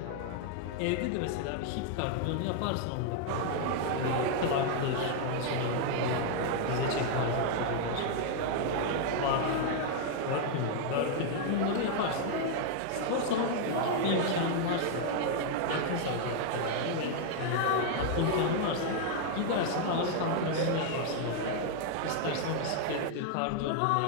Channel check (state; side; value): different; both; correlation 0.00